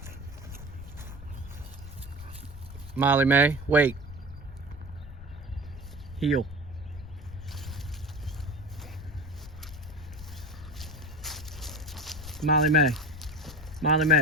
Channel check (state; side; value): noise; left; rumble, 15 dB below the sound